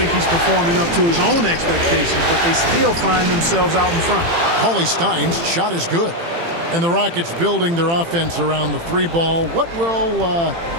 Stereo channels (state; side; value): late; left; 18 ms